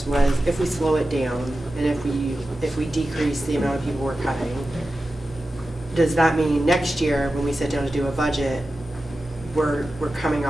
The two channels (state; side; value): normal; both; correlation 0.93